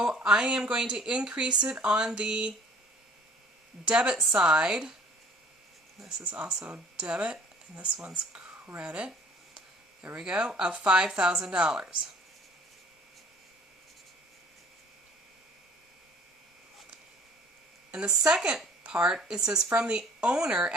I am going to increase it on the debit side. This is also debit, and this one's credit. There we go, of $5,000. And the second part, it says from the owner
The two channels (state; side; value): normal; both; correlation 0.53